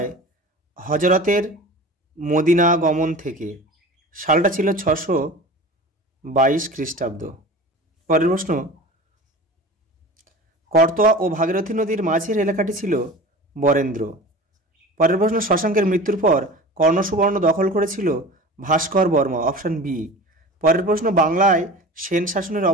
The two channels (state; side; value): normal; both; correlation 0.36